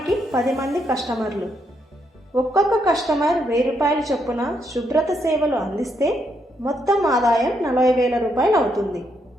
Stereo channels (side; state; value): both; normal; correlation 0.77